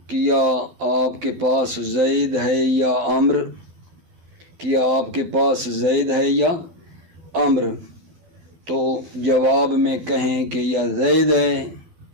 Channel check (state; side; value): late; left; 12 ms